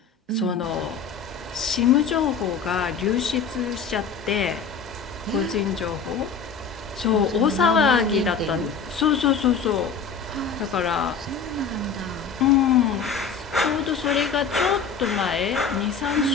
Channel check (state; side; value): quieter; right; 5.8 dB